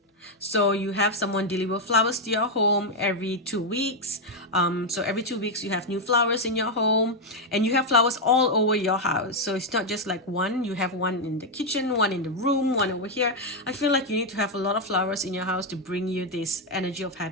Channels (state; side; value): normal; both; correlation 0.02